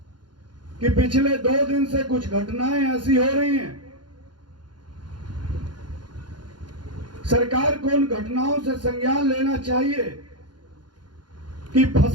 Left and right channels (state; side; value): late; left; 0.71 ms